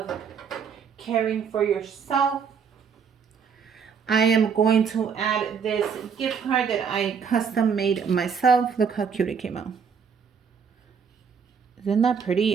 caring for yourself. I am going to add this gift card that I custom made myself. Look how cute it came out. Isn't that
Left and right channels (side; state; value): left; quieter; 6.6 dB